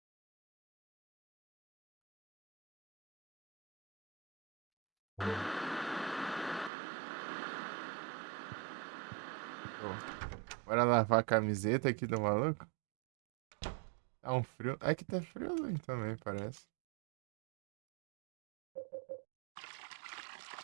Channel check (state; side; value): drops out; left; at 6.7 s